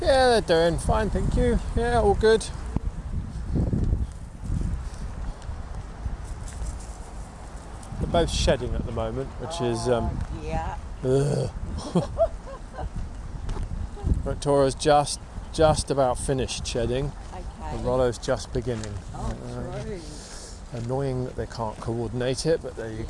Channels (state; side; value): identical; both; correlation 1.00